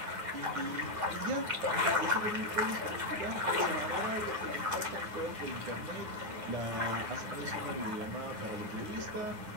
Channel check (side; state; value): left; late; 9.6 ms